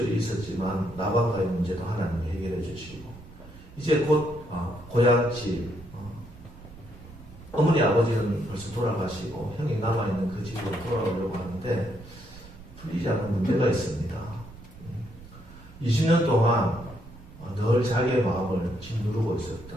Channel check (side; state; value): right; noise; rumble, 18 dB below the sound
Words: 있었지만 라반과의 문제도 하나님이 해결해 주시고, 이제 곧 고향집, 어머니 아버지는 벌써 돌아가시고 형이 남아있는 그 집으로 돌아오려고 하는데 풀리지 않는 문제가 있습니다. 20년 동안 늘 자기의 마음을 짓누르고